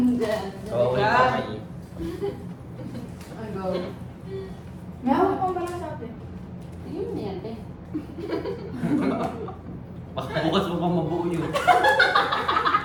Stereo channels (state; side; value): identical; both; correlation 1.00